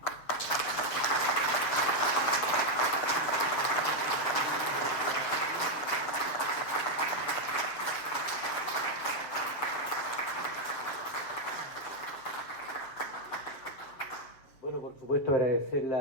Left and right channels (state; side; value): late; right; 7.5 ms